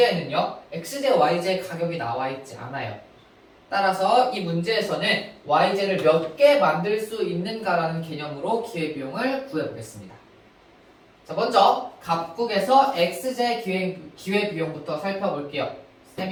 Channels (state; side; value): identical; both; correlation 1.00